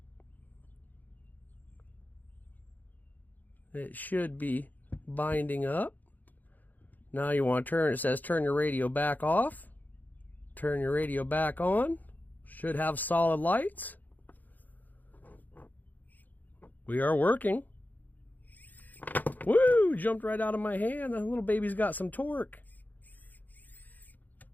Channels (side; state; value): right; late; 0.083 ms